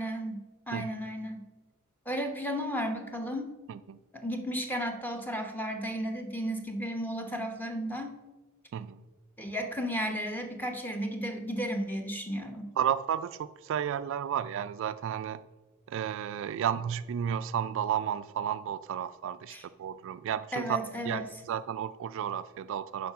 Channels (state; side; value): quieter; left; 4.1 dB